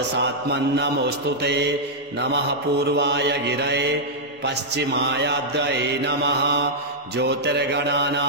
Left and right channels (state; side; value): normal; both; correlation -0.07